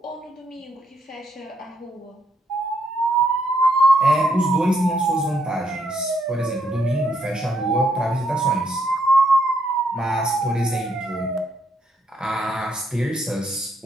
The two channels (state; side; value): normal; both; correlation 0.75